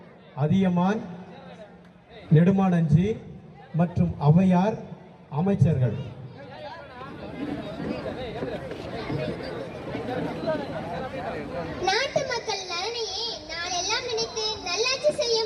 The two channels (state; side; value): identical; both; correlation 1.00